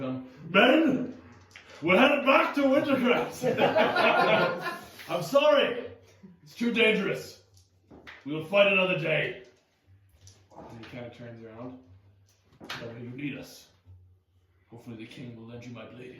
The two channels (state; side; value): identical; both; correlation 1.00